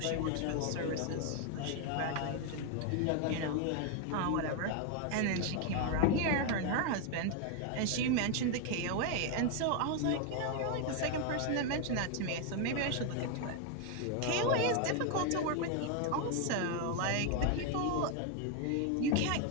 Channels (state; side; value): different; both; correlation 0.01